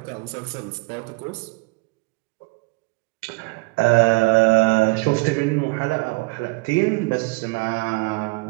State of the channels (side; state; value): left; quieter; 26.4 dB